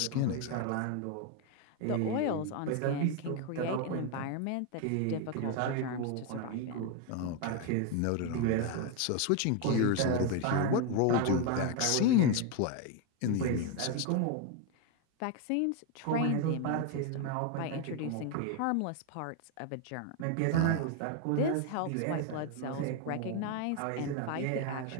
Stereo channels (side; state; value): both; different; correlation 0.01